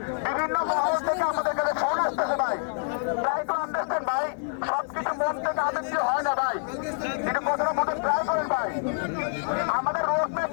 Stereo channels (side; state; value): right; silent; digital silence